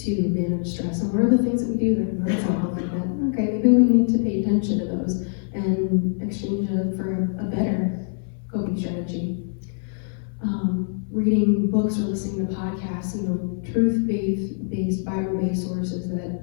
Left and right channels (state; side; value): silent; right; 63 dB below the other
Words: manage stress? And what are the things that we do that are not so healthy? That, okay, maybe we need to pay attention to those and exchange them for a better coping strategy. Reading books or listening to podcasts, truth-based, Bible-based sources that